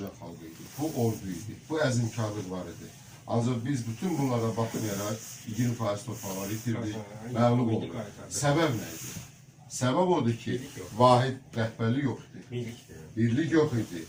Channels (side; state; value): both; identical; correlation 1.00